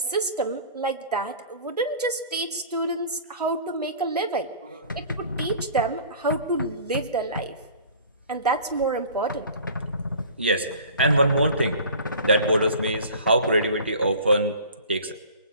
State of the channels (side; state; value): both; inverted; correlation -0.44